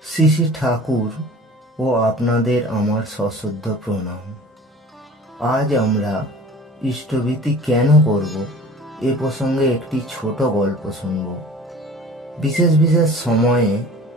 শ্রী শ্রী ঠাকুর ও আপনাদের আমার সশ্রদ্ধ প্রণাম। আজ আমরা ইষ্টভীতি কেন করব এ প্রসঙ্গে একটি ছোট গল্প শুনব। বিশেষ বিশেষ সময়ে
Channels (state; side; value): normal; both; correlation 0.44